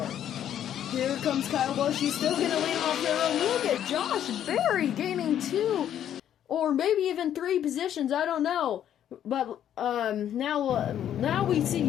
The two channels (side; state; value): right; quieter; 10.4 dB